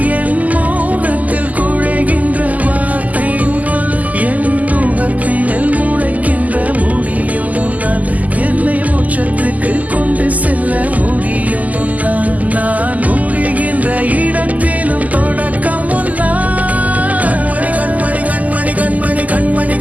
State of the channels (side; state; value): left; late; 0.077 ms